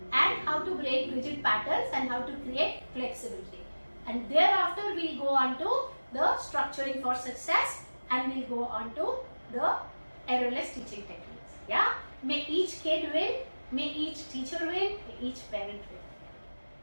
and how to break rigid patterns and how to create flexibility. And thereafter we'll go on to the structuring for success and we'll go on to the errorless teaching techniques. Yeah, may each kid win, may each teacher win, may each parent win.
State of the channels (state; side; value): inverted; both; correlation -1.00